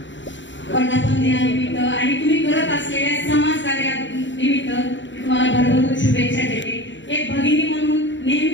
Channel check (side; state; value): right; late; 0.54 ms